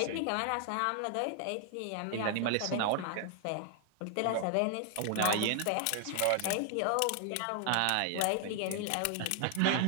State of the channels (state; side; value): different; both; correlation 0.00